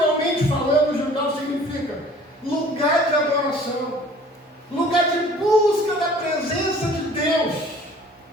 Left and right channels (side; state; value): both; normal; correlation 0.50